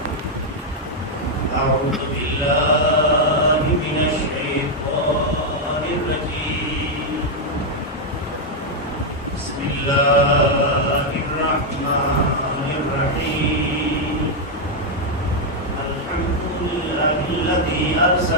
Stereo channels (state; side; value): normal; both; correlation 0.00